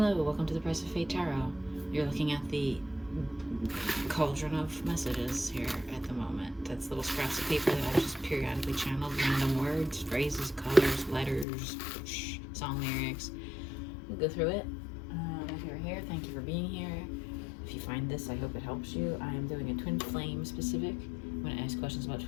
welcome to the Price of Fate Tarot. You're looking at the cauldron of messages here at the moment. That's little scraps of paper that I've just periodically channeled, random words, phrases, colors, letters, song lyrics. We'll go through it. If you're here, thank you for being here. If you find this, I hope it helps you. I am doing a twin flame specific. I'm going to ask questions about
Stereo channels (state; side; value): drops out; right; at 11.5 s